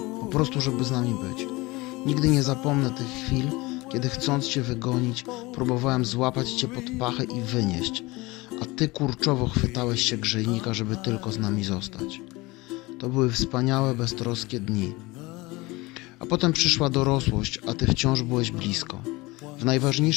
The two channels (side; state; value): right; quieter; 22.4 dB